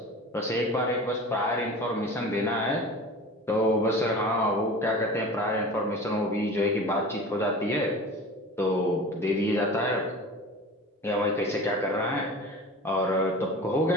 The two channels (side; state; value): both; normal; correlation 0.37